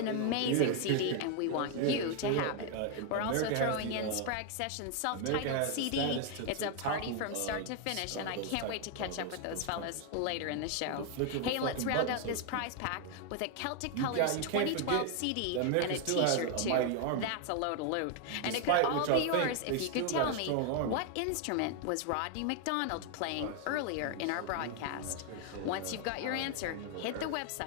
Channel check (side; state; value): both; different; correlation 0.01